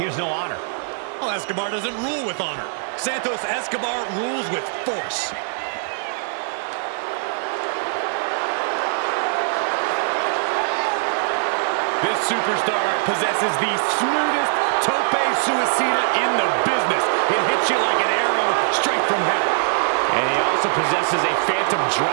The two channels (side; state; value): left; silent; 55 dB below the other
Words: has no honor. Well, Escobar doesn't rule with honor. Santos Escobar rules with force. This superstar possesses the smoothest tope suicida in the business. It hits you like an arrow straight from hell. And he also possesses a phantom